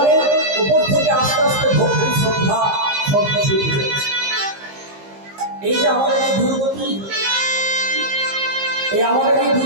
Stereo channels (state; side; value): late; left; 15 ms